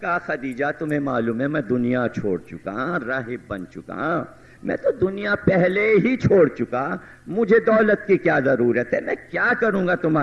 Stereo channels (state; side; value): identical; both; correlation 1.00